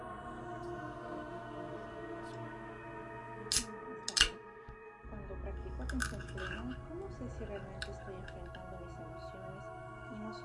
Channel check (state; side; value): identical; both; correlation 1.00